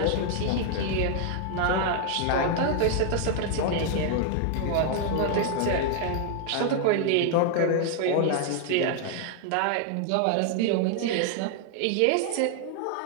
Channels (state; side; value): different; both; correlation 0.00